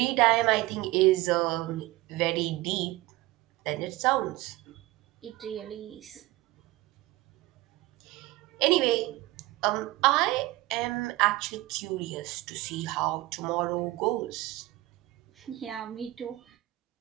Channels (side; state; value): left; quieter; 18.6 dB